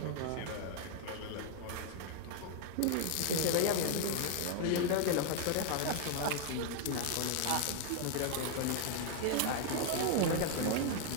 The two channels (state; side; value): different; both; correlation 0.00